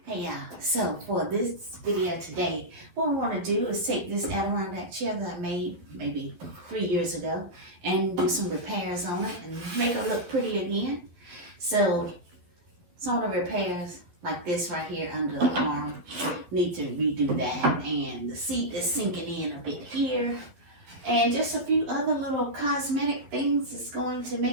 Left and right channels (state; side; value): late; left; 12 ms